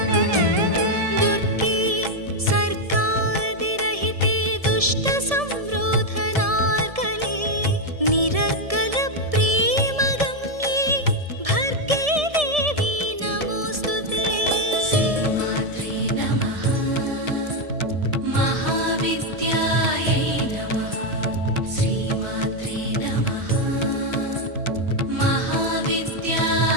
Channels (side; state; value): left; late; 1.7 ms